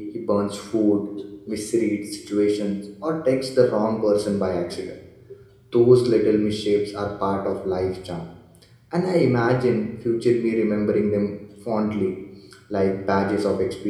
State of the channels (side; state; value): both; identical; correlation 1.00